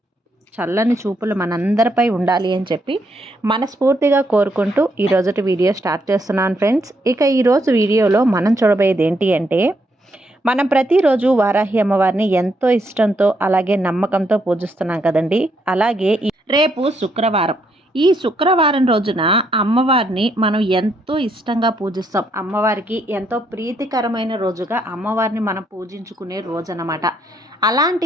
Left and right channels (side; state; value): both; normal; correlation 0.75